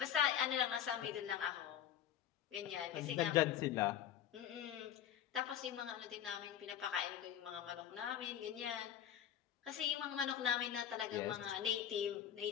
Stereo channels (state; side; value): quieter; right; 10.1 dB